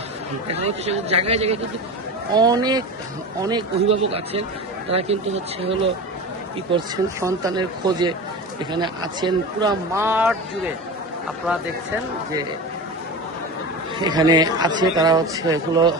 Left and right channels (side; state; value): both; normal; correlation 0.28